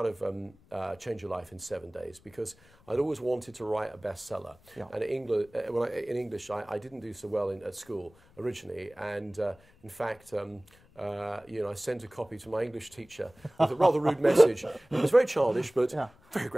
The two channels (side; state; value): left; noise; rumble, 28 dB below the sound